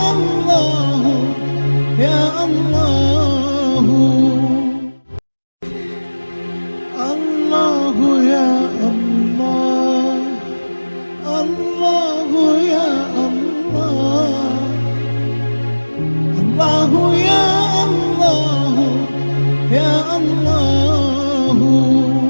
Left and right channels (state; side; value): inverted; both; correlation -1.00